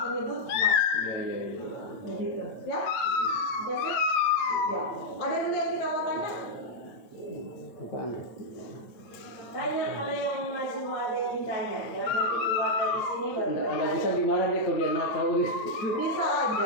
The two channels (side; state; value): right; late; 8.9 ms